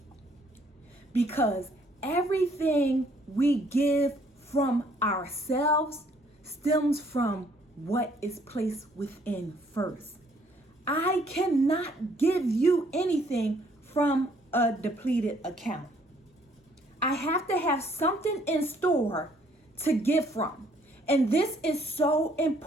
Because everything we give from ourselves stems from what is placed within first. I cannot give you anything from a depleted account. I have to have something in store to give from. And this is so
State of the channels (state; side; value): normal; both; correlation 0.64